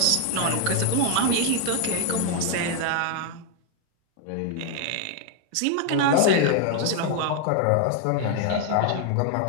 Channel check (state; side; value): different; both; correlation 0.00